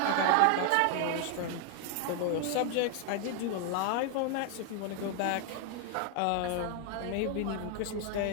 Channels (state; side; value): different; both; correlation 0.00